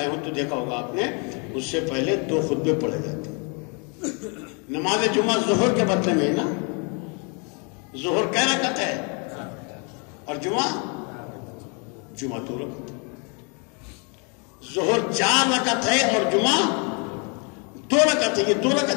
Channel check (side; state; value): right; quieter; 35.3 dB